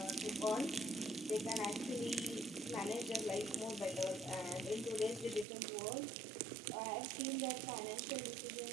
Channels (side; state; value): left; drops out; at 5.5 s